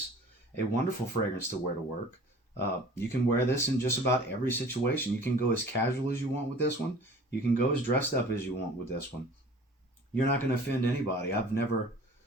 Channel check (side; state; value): both; normal; correlation 0.46